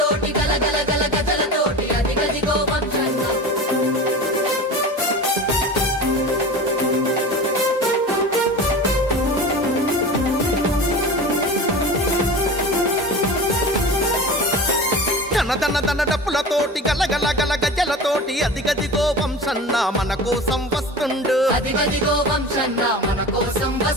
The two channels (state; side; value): normal; both; correlation 0.33